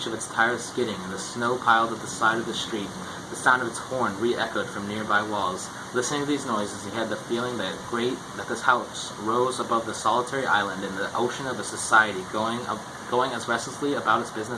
of its tires skidding and the snow piled at the side of the street. The sound of its horn re-echoed from nearby walls. Listening to these noises, he had the feeling that this house rose above the solitary island in the ocean of a society going as restlessly about its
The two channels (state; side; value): identical; both; correlation 1.00